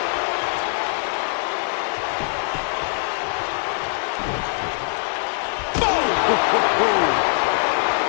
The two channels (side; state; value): right; silent; 58 dB below the other